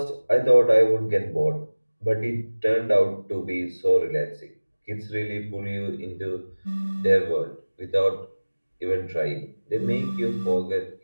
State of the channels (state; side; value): inverted; both; correlation -1.00